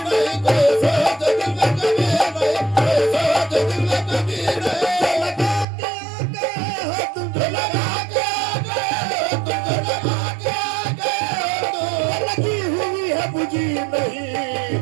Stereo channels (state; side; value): drops out; left; at 5.7 s